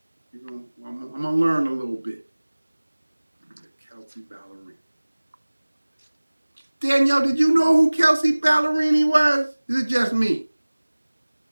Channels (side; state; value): both; inverted; correlation -1.00